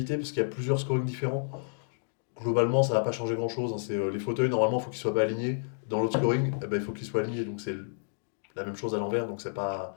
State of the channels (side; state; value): right; silent; digital silence